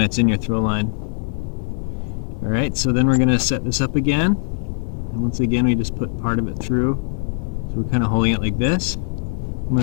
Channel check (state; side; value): silent; right; 65 dB below the other